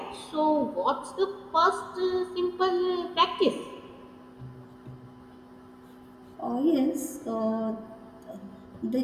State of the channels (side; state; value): both; identical; correlation 1.00